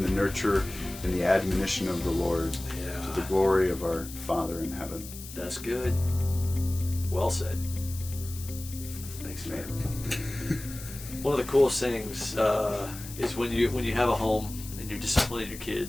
the nurture and the admonition of the Lord, to the glory of our Father in heaven. That's good. Well said. Thanks, man. One of the coolest things is when you have a home and you're disciplining your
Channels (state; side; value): noise; left; hiss, 13 dB below the sound